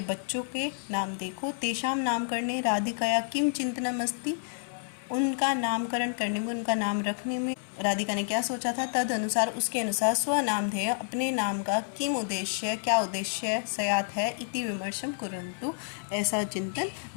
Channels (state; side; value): silent; right; 58 dB below the other